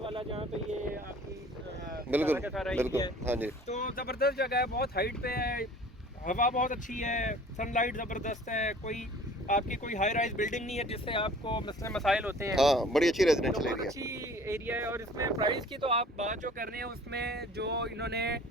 जहाँ पे ये आपकी बिल्कुल हाँ जी। तो ज़बरदस्त जगह है, बहुत हाइट पे है। हवा बहुत अच्छी है, सनलाइट ज़बरदस्त है, आपकी कोई हाई राइज बिल्डिंग नहीं है जिससे आपको मसाइल होते हैं। हाँ, बड़ी अच्छी तो रेजिडेंशियल बहुत एरिया। अच्छी एरिया है। और इसमें प्राइस की तो आप बात जो कर रहे हैं उसमें जो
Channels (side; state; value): both; normal; correlation 0.49